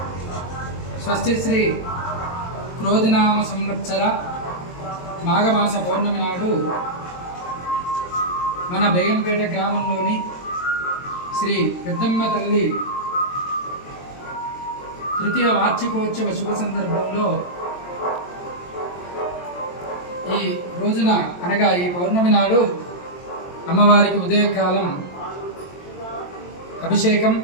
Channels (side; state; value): right; late; 22 ms